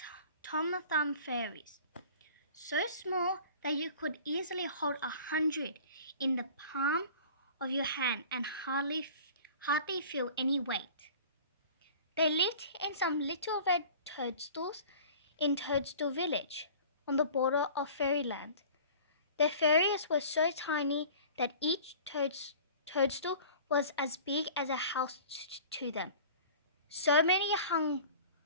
Tom Thumb Fairies. So small that you could easily hold 100 in the palm of your hand and hardly feel any weight. They lived in some little red toadstools in Toadstool Village, on the border of fairyland. The fairies were so tiny that each toadstool was as big as a house to them. So many hung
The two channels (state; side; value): inverted; both; correlation -0.44